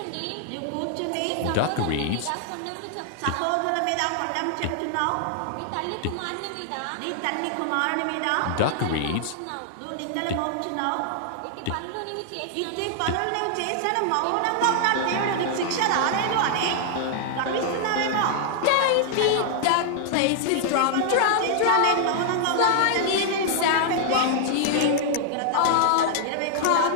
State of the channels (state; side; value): different; both; correlation 0.00